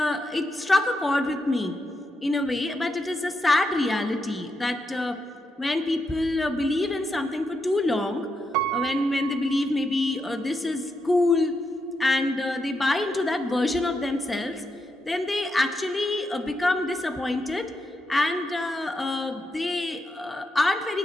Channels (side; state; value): both; normal; correlation 0.83